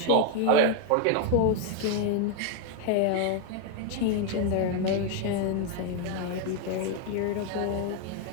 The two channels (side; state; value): both; different; correlation 0.01